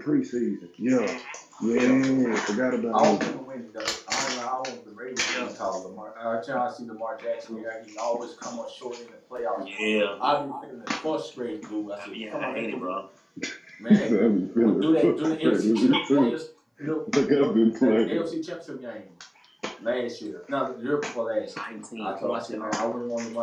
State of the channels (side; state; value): both; identical; correlation 1.00